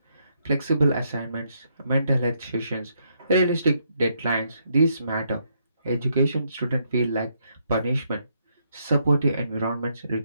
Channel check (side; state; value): both; inverted; correlation -0.75